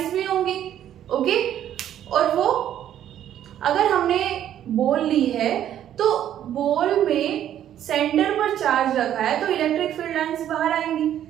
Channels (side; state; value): left; quieter; 10.9 dB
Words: भी होंगी, ओके, और वो अगर हमने बॉल ली है तो बॉल में सेंटर पर चार्ज रखा है तो इलेक्ट्रिक फील्ड लाइंस बाहर आएंगी,